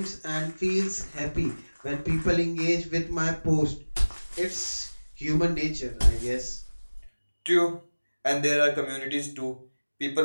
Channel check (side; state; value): both; inverted; correlation -1.00